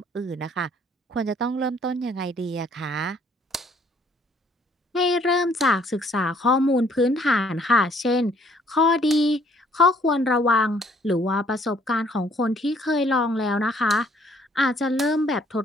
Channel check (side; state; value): both; normal; correlation 0.63